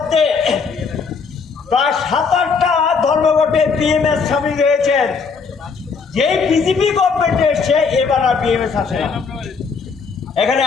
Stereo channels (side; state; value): right; quieter; 5.2 dB